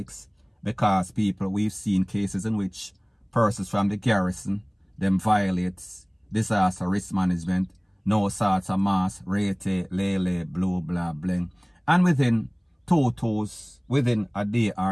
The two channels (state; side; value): identical; both; correlation 1.00